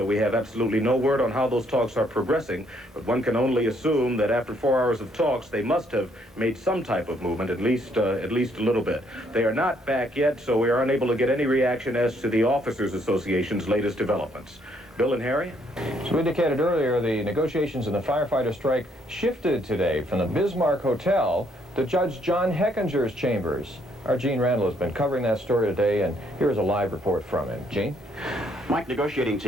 we have absolutely no word on how those talks are progressing. But one can only assume that after 4 hours of talks, they must have made some type of movement, at least a little bit. They are not back yet, so we are unable to get any reaction as to the Officers Association's latest developments. Bill and Harry? As we indicated earlier, the negotiations in the firefighter strike shifted today from the Bismarck Hotel to Judge John Heckinger's chambers. Our Gene Randall has been covering that story today, and here's a live report from him. Gene? Mike, negotiating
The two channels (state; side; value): normal; both; correlation 0.69